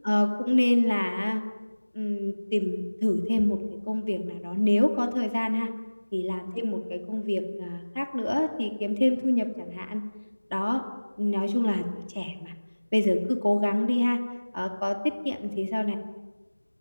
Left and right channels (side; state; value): both; inverted; correlation -1.00